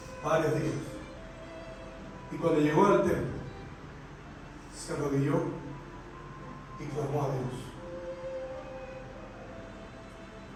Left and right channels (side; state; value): both; identical; correlation 1.00